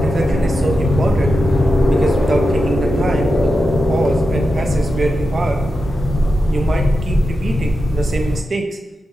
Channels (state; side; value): normal; both; correlation 0.90